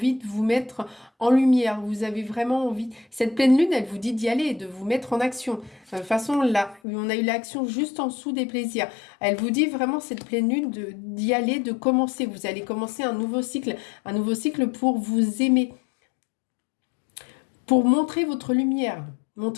de vous mettre en lumière. Vous avez vraiment envie... Cette pleine lune, elle vous dit d'y aller, de vous mettre en action. De toute façon, là, on a eu l'action juste en dessous des plaisirs. Elle vous dit vraiment, cette pleine lune, d'y aller, de commencer. Vous allez commencer un nouveau cycle pour vous aimer. Pour montrer votre lumière.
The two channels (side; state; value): right; drops out; at 6.8 s